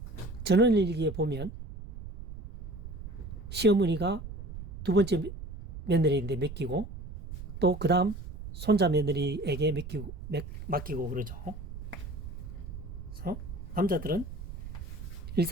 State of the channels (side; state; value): right; noise; rumble, 10 dB below the sound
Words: 전원일기에 보면 시어머니가 두 번째 며느리인데 맡기고 또 그 다음 손자 며느리에게 맡기고 그러죠. 그래서 남자들은